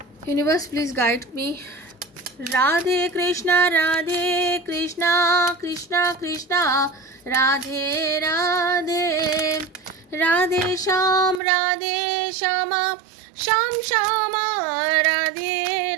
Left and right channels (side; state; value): left; drops out; at 11.4 s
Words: Universe please guide me. Radhe Krishna Krishna Krishna Radhe Radhe. Radhe Shyam Shyam Shyama Radhe